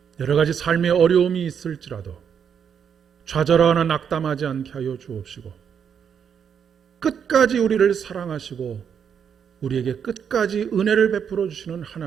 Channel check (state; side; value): quieter; left; 7.6 dB